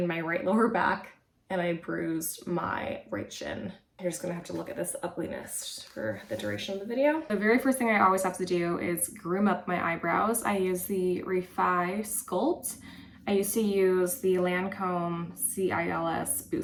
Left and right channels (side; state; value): both; identical; correlation 1.00